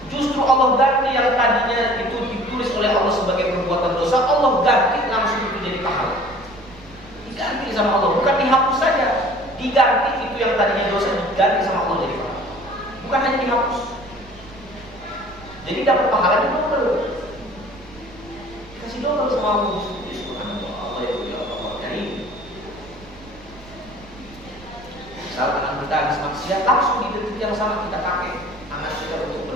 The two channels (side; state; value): right; noise; rumble, 21 dB below the sound